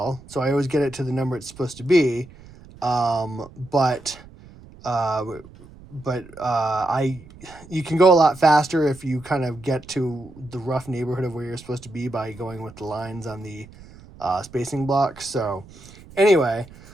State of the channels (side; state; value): right; noise; rumble, 21 dB below the sound